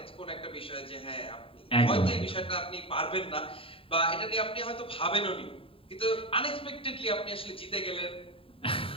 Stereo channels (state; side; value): late; right; 0.27 ms